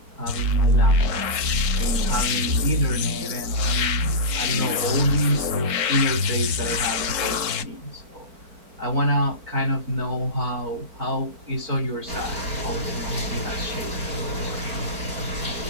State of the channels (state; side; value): late; left; 4.4 ms